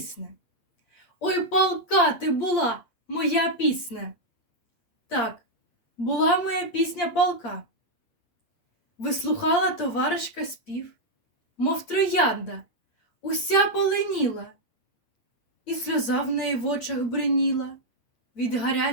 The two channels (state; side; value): late; right; 8.5 ms